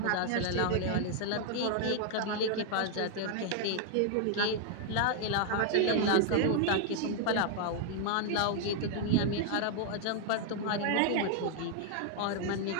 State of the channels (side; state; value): both; different; correlation 0.00